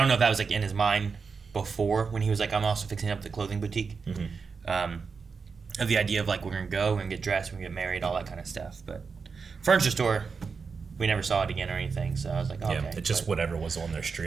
know if that was like in his mind before when he was like, I'm also fixing up the clothing boutique. Of the idea of like we're gonna get dressed, we're gonna get married, all that kind of stuff. But furniture store, we never saw it again or anything. So I was like, okay. It's just whatever was on their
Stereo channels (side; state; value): left; quieter; 5.2 dB